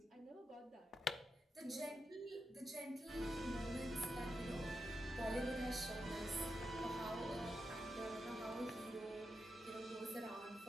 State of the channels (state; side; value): normal; both; correlation 0.87